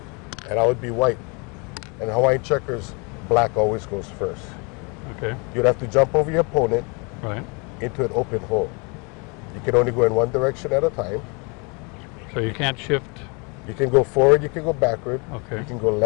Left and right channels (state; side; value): quieter; right; 31.9 dB